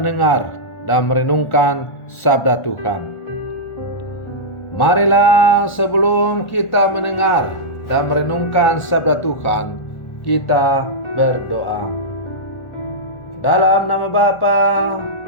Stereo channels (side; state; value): right; late; 1.4 ms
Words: dan merenungkan sabda Tuhan. Marilah sebelum kita mendengar dan merenungkan sabda Tuhan, kita berdoa. Dalam nama Bapa